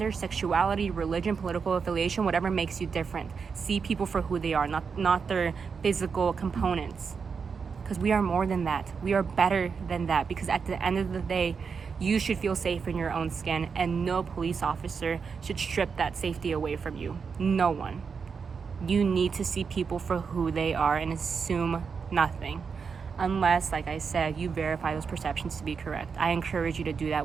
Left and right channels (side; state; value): left; quieter; 5.7 dB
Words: sexuality, religion, political affiliation, whatever makes you different. See people for who they are, not their physical components. Because we are more than that. We are better than that. Because at the end of the day, you should feel safe in your own skin, and no police officer should strip that safety away from you. No one. You need to see people for who they are and assume nothing. Unless, like I said, you verify those perceptions to be correct. I encourage you to do